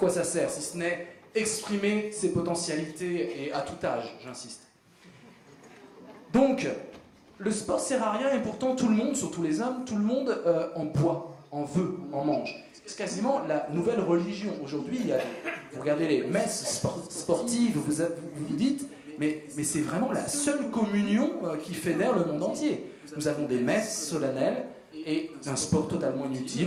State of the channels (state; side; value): identical; both; correlation 1.00